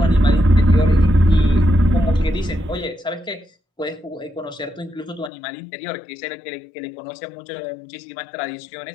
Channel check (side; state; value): right; drops out; at 5.3 s